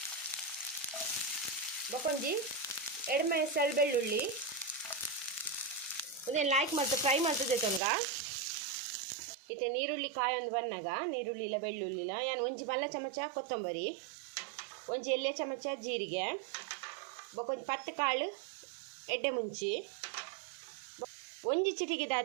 ಬೊಕೊಂಜಿ ಎಡಮೆ ಸೆಳ್ ಬೆಳ್ಳುಳ್ಳಿ ಉದೇನು ಲೈಕ್ ಮತ್ತು ಫ್ರೈ ಮಾಡ್ತದೆ ತೊಂಗ ಇತ್ತೆ ನೀರುಳ್ಳಿ ಕಾಯೊಂದು ಬನ್ನಾಗ ನೀರುಳ್ಳಿ ಇಲ್ಲ ಬೆಳ್ಳುಳ್ಳಿ ಇಲ್ಲ ಯಾನು ಒಂಜಿ ಮಲ್ಲ ಚಮಚ ಕೊತ್ತಂಬರಿ ಒಂಜಿ ಎಲ್ಲೆ ಚಮಚ ಜೀರಿಗೆ ಬೊಕೊಂಜಿ ಪತ್ತು ಕಾಳು ಎಡ್ಡೆ ಮುಂಚಿ ಒಂಜಿ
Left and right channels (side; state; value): left; drops out; at 7.8 s